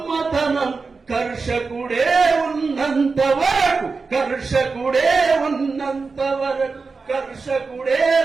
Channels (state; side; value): quieter; left; 4.4 dB